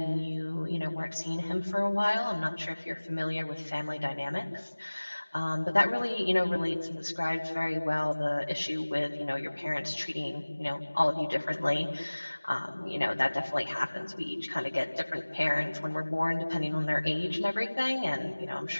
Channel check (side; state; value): both; inverted; correlation -1.00